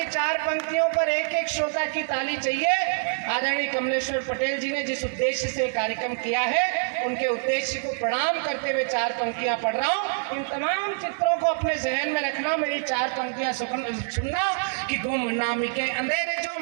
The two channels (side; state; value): left; silent; digital silence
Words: 4 पंक्तियों पर एक एक श्रोता जोरदार की ताली चाहिए। आदरणीय कमलेश्वर पटेल जी ने जिस उद्देश्य से कार्यक्रम किया है, उनके उद्देश्य को प्रणाम करते हुए 4 पंक्तियां पढ़ रहा हूँ। इन तमाम चित्रों को अपने जहन में रखना, मेरी 4 पंक्तियां सुनना कि गुमनामी के अंधेरे जो